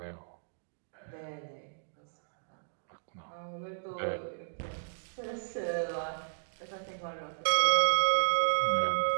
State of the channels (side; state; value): left; silent; digital silence